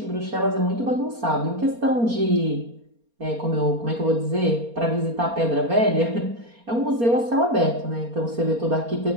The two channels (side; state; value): left; late; 4.3 ms